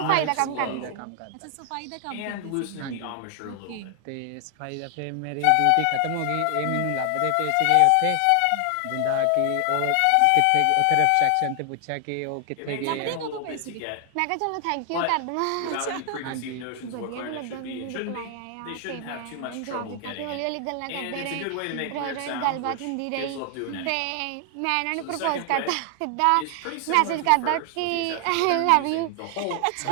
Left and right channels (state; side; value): different; both; correlation 0.00